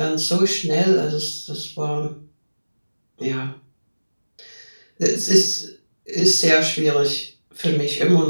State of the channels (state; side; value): inverted; both; correlation -1.00